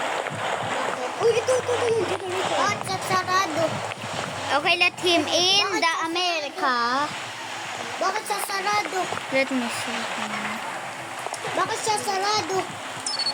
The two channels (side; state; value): both; identical; correlation 1.00